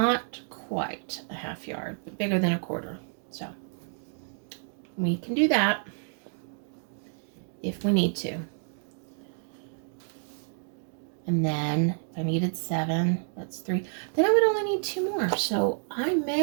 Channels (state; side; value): silent; left; 58 dB below the other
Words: quite a half yard, but bigger than a quarter. So we can do that if we need to. And then if I needed 7, that's 3. Then I would only need 2 more. So I